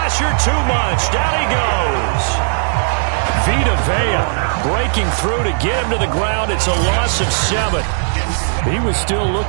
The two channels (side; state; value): left; silent; digital silence